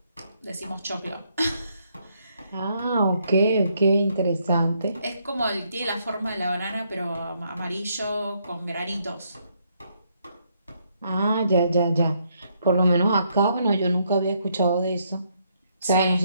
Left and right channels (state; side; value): inverted; both; correlation -0.73